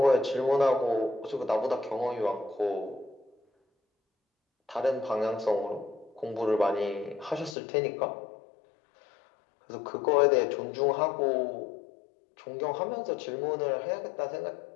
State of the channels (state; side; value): drops out; right; at 7.6 s